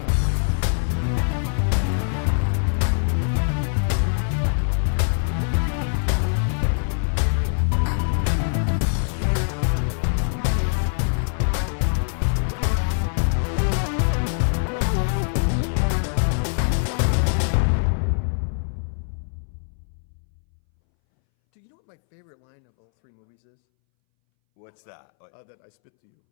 Do you know what my favorite line of all three movies is? What's that? That I spit to you.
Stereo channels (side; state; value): right; silent; 62 dB below the other